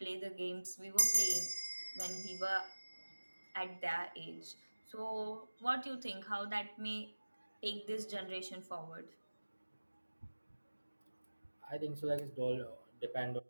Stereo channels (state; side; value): inverted; both; correlation -1.00